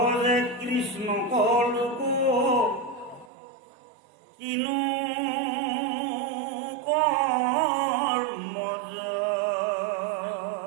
কৃষ্ণ কলোক কিনো কৰ্মজ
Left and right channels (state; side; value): drops out; left; at 3.3 s